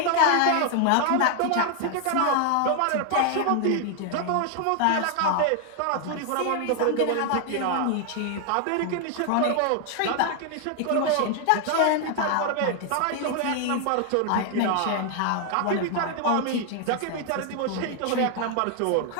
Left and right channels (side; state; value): both; different; correlation 0.00